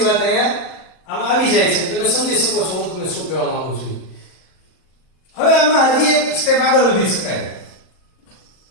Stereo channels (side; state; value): right; late; 38 ms